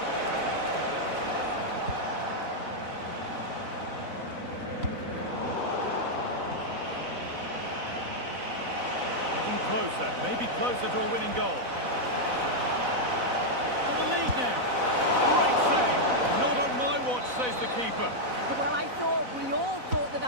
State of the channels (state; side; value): late; left; 4.0 ms